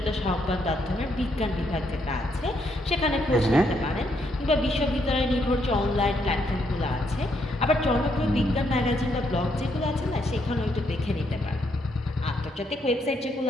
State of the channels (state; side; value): normal; both; correlation 0.75